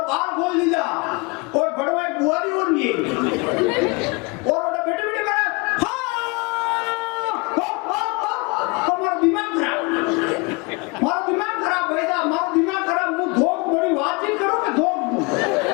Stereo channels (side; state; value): right; quieter; 29.0 dB